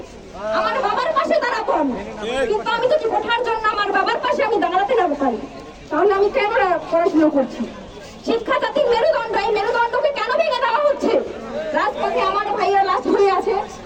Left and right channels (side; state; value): both; identical; correlation 1.00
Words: আমার বাবার পাশে দাঁড়াবো আমি, কিন্তু আমি যদি কোঠার জন্য আমার বাবার পাশে আমি দাঁড়াতে না পারি, তাহলে আমি কেন পড়াশোনা করছি? শিক্ষা জাতির মেরুদণ্ড, এই মেরুদণ্ডকে কেন ভেঙে দেওয়া হচ্ছে? রাজপথে আমার ভাইয়েরা লাশ হয়ে আছে,